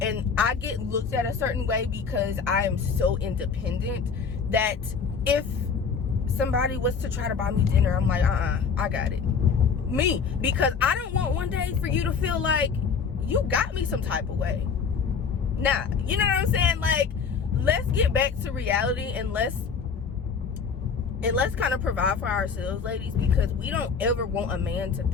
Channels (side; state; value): right; quieter; 5.9 dB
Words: I get looked at a certain way because I am so independent, that if somebody was to try to buy me dinner, I'm like, I got it. Me. Because I don't want one day for you to feel like you got me some type of way. Nah, you know what I'm saying? Like, let's get back to reality, and let's kind of provide for ourselves, ladies, because we don't ever want a man to